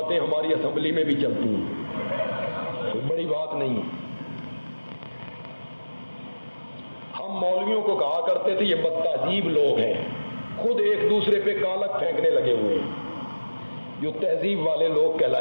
ہماری اسمبلی میں بھی چلتی ہیں، کوئی بڑی بات نہیں ہے۔ ہم مولویوں کو کہا کرتے تھے یہ بدتہذیب لوگ ہیں، خود ایک دوسرے پہ کالک پھینکنے لگے ہوئے ہیں، جو تہذیب والے لوگ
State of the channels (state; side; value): inverted; both; correlation -1.00